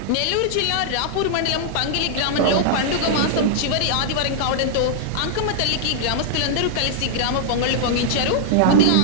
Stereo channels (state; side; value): different; both; correlation -0.01